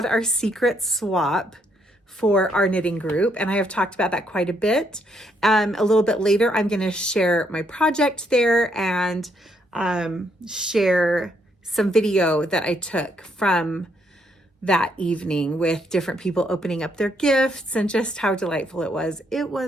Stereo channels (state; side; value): normal; both; correlation 0.73